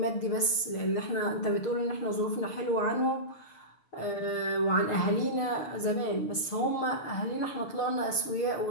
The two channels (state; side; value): late; right; 6.6 ms